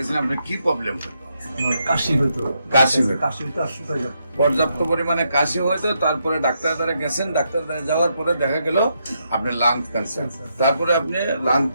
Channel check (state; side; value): inverted; both; correlation -0.79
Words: আপনার কি প্রবলেম হতো? আমার কাশি হইতো। কাশি হতো। কাশি হইতো আর শুকাই যেত। পর্যাপ্ত পরিমাণে কাশি হয়তো, তারপরে ডাক্তার দ্বারা গেছেন, ডাক্তার দ্বারা যাওয়ার পরে দেখা গেল আপনার লাং ক্যান্সার। তারপরে আপনি লাং